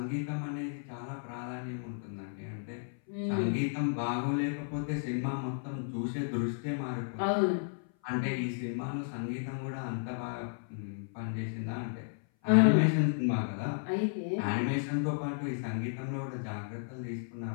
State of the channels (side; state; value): right; silent; 55 dB below the other